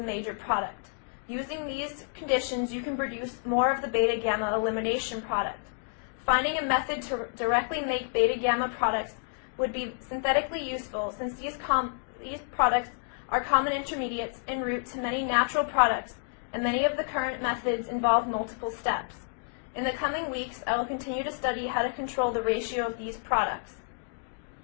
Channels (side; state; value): right; silent; digital silence